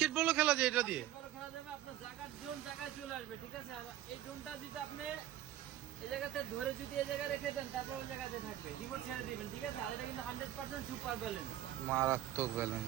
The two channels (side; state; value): left; quieter; 12.7 dB